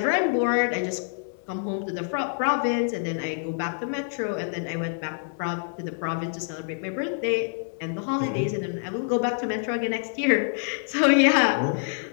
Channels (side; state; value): right; silent; digital silence